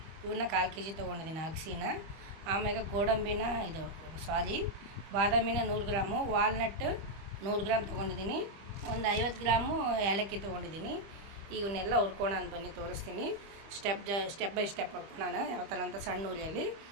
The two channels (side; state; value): left; late; 25 ms